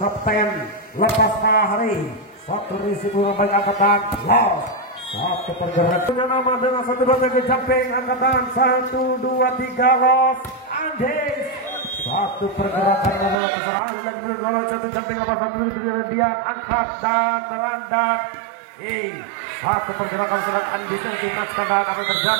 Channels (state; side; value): drops out; left; at 13.4 s